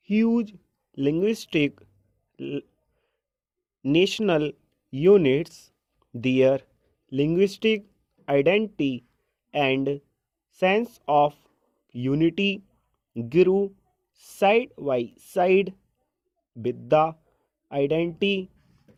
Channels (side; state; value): both; identical; correlation 1.00